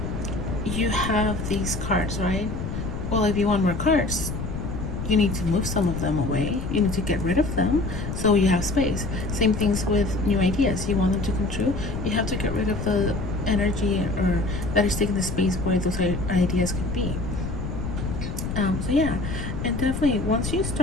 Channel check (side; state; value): left; noise; rumble, 5 dB below the sound